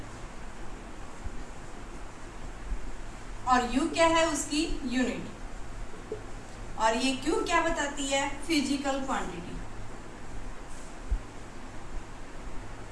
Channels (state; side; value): identical; both; correlation 1.00